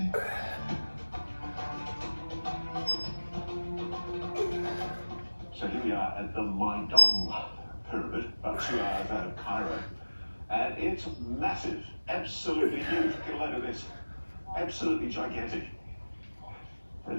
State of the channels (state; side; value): inverted; both; correlation -1.00